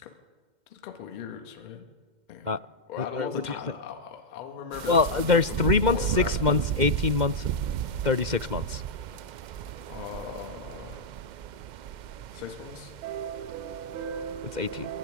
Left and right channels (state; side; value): late; left; 2.1 ms